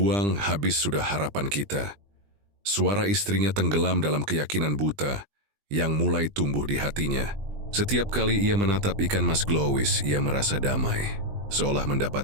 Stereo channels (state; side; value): late; left; 20 ms